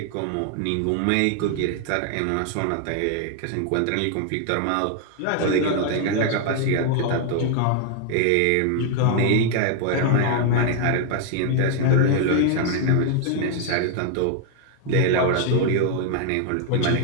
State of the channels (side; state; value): both; different; correlation 0.00